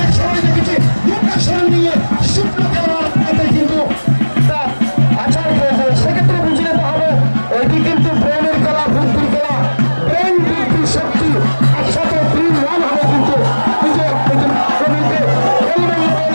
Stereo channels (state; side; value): inverted; both; correlation -1.00